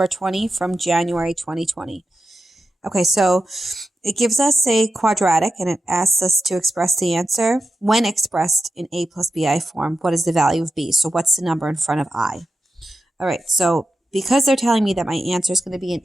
20 from January 2020. Okay, so it gives us a quadratic and it asks us to express the answer. When expressed in a plus bi form, what is the value of b? So what's the number in front of I? All right, so because they're telling me that my answer is going to be in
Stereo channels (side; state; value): both; normal; correlation 0.90